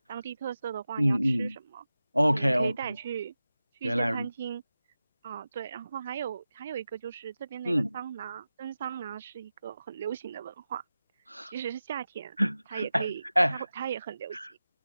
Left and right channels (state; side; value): inverted; both; correlation -0.94